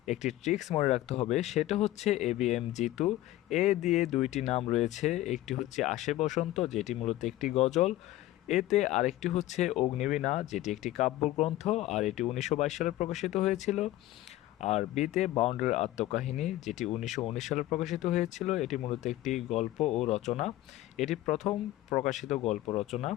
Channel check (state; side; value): quieter; right; 15.5 dB